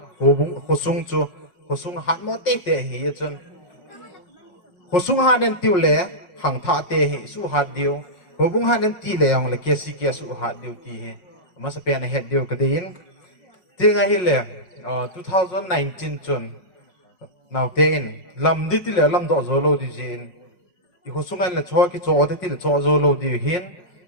hobung khosung chu, khosung hat mo te hi ye chun. Khosung hat nen tiu le khang tha te hi su hat dio. Hubung hanen ti le yang le kesi kesu hat diu ti he mas pen head diu kadin tinga hi le 2019 chun now ten lam di ti le lam do zo lo di jin i ho sungai le cho ki cho ti le cho zo lo di hin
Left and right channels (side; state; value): right; late; 5.5 ms